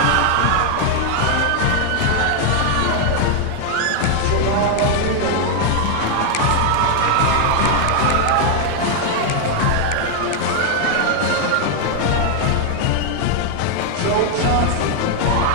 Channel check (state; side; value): different; both; correlation 0.00